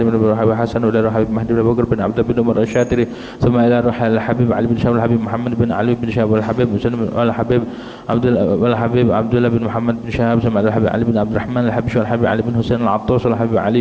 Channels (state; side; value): identical; both; correlation 1.00